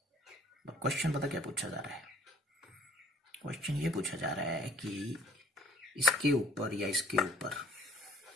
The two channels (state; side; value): normal; both; correlation 0.52